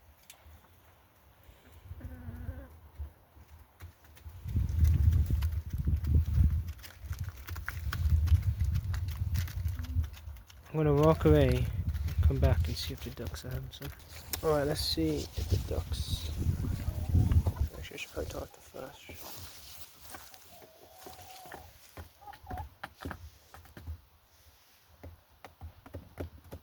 I'm gonna walk away, come back and see if the ducks are having some. Alright, let's see if the ducks. Actually, I should probably talk to Flash.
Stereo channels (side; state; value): both; identical; correlation 1.00